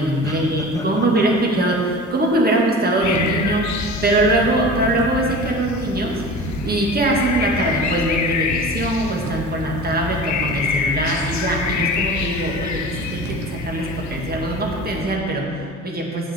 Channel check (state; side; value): normal; both; correlation 0.36